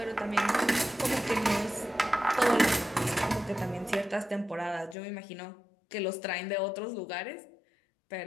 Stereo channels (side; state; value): right; drops out; at 5.0 s